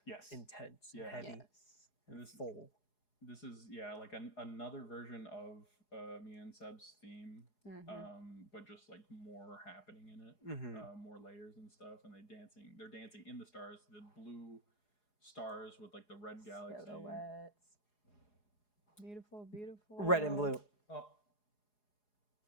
yes. intense, Yeah. and heavy, Yes. and And this- full. This is like another version of me and Seb's theme, Mhm. but just like more happening in it, Mm-hmm. more layers and stuff, and they're dancing in the stars, the blue stars with like the red galaxy. Silhouettes. Beautiful, beautiful. Red and blue. Oh, all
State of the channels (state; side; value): late; right; 4.8 ms